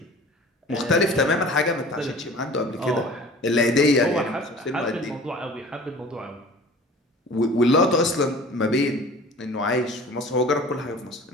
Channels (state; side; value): normal; both; correlation 0.43